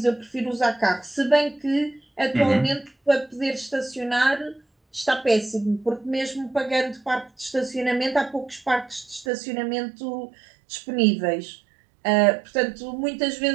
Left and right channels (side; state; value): left; drops out; at 9.2 s